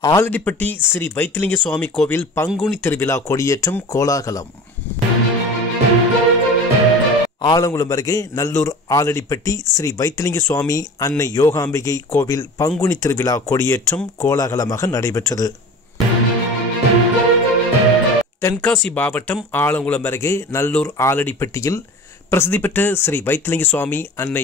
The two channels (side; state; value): both; normal; correlation 0.37